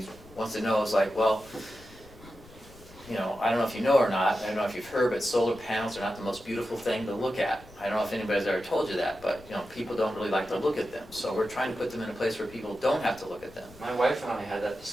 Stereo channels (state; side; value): noise; left; rumble, 22 dB below the sound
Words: wants to know, it's like, well, I don't know if you know or not, I don't know if you've heard, but solar panels are not the most beautiful thing to look at. I don't know if anybody's ever told you that, but, people don't really like to look at them. So we're trying to put them in a place where people don't have to look at them. My wife and I had that